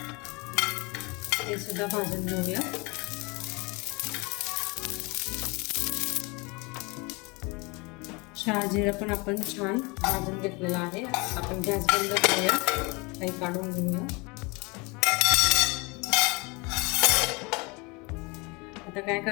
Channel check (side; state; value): right; quieter; 27.5 dB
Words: ते सुद्धा भाजून घेऊया. शहाजिरं पण आपण छान भाजून घेतलेलं आहे. आपण गॅस बंद करूया, काही काढून घेऊया. आता काय